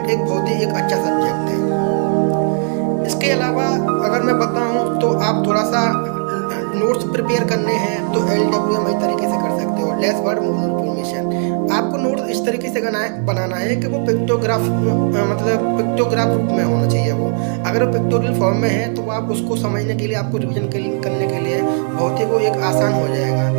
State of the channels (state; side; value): silent; left; 57 dB below the other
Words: बहुत ही एक अच्छा सब्जेक्ट है। इसके अलावा अगर मैं बताऊं तो आप थोड़ा सा नोट्स प्रिपेयर करने हैं तो LWM इस तरीके से कर सकते हो, लेस वर्ड मोर इन्फॉर्मेशन। आपको नोट्स इस तरीके से बनाना है कि वो पिक्टोग्राफ रूप में होना चाहिए। वो अगर वो पिक्टोरियल फॉर्म में है तो आप उसको समझने के लिए, आपको रिविजन करने के लिए बहुत ही वो एक आसान हो जाएगा,